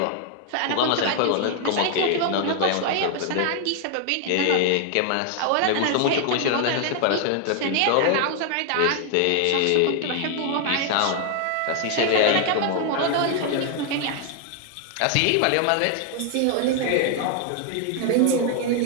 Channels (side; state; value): both; different; correlation 0.00